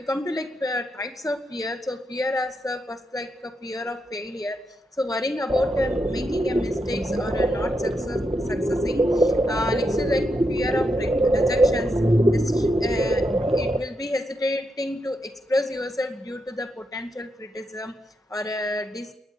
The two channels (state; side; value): normal; both; correlation 0.82